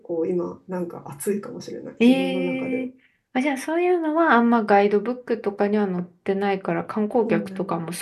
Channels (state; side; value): identical; both; correlation 1.00